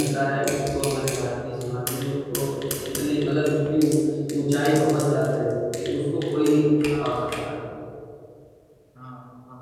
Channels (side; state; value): both; identical; correlation 1.00